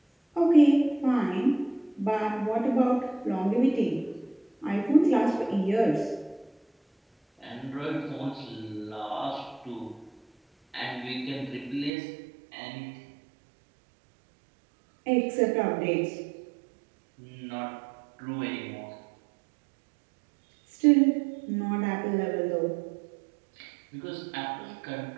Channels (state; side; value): drops out; left; at 11.9 s